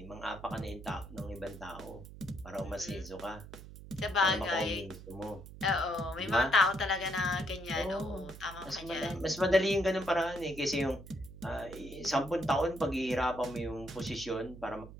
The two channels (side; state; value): right; noise; hum, 15 dB below the sound